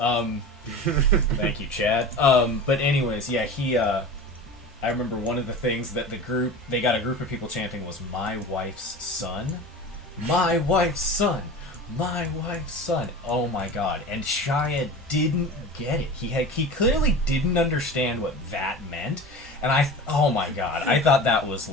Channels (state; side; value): normal; both; correlation 0.34